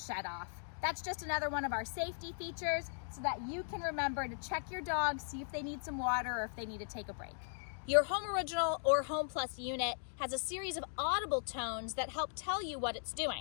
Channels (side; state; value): right; silent; digital silence